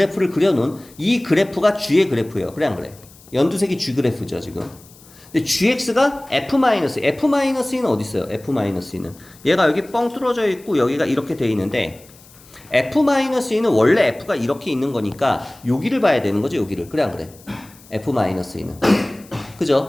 그려놓은 이 그래프가 g의 그래프예요. 그래 안 그래? 연두색이 g 그래프죠 지금. 근데 gx가 f-는 어디 있어요? f-는 얘가 여기 뻥 뚫어져 있고 여기가 이렇게 돼 있는데 f-는 원래 f가 이렇게 있는 거니까 여기를 봐야 되는 거죠. 여기를. 그래 안 그래? f-는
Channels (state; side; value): noise; left; hiss, 24 dB below the sound